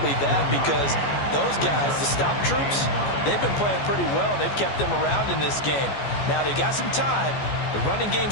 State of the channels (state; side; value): late; right; 14 ms